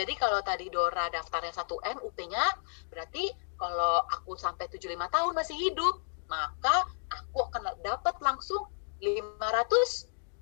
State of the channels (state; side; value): silent; right; digital silence